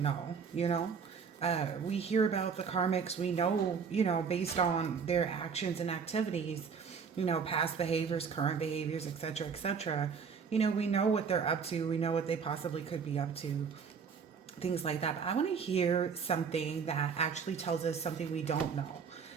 you know? We hear about the karmics, we know, based on their actions and activities, past behaviors, current behaviors, etc., etc. We know what they're up to, we know what they possibly could be up to, things like that. But I want to hear something that actually tells us something we don't know.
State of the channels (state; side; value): quieter; left; 6.1 dB